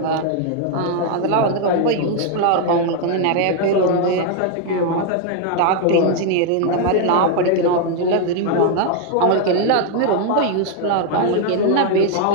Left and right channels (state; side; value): different; both; correlation 0.00